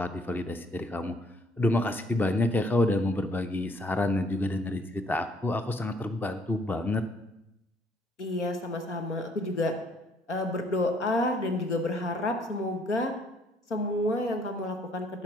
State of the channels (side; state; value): both; normal; correlation 0.64